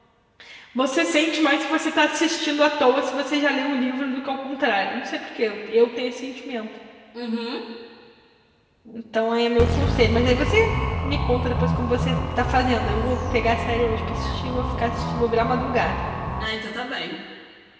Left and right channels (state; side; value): identical; both; correlation 1.00